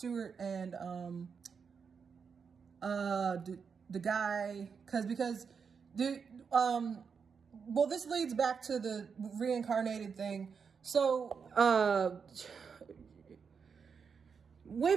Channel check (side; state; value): left; quieter; 6.0 dB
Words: and the guy, because well, this leads back to the reincarnated thing. So way